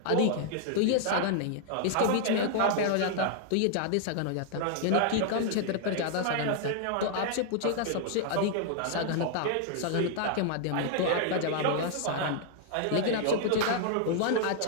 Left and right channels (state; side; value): different; both; correlation -0.01